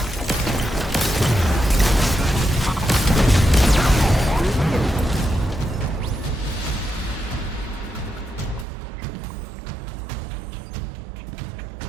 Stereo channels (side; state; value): left; drops out; at 8.7 s